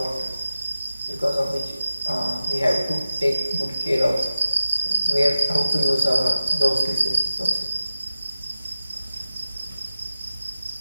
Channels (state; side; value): inverted; both; correlation -0.94